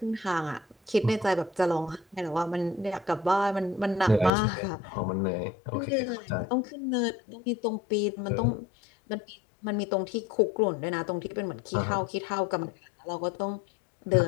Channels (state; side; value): drops out; right; at 4.3 s